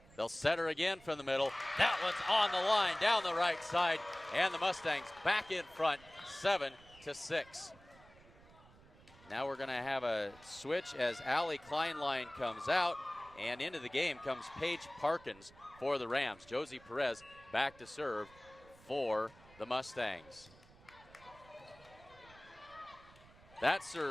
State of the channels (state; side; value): noise; right; rumble, 24 dB below the sound